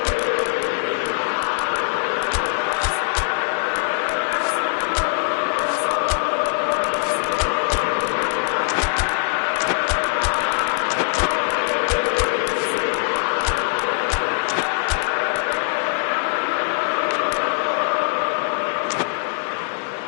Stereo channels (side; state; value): right; silent; digital silence